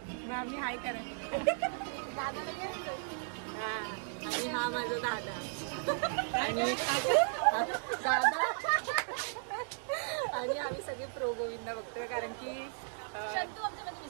हाय करा, हा, आणि हा माझा दादा आणि दादा, आणि आम्ही सगळे प्रो गोविंदा बघतोय कारण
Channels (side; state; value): left; silent; digital silence